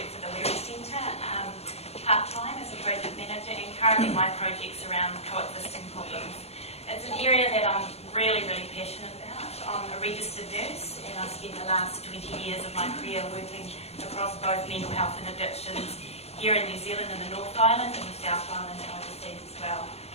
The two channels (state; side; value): late; right; 0.30 ms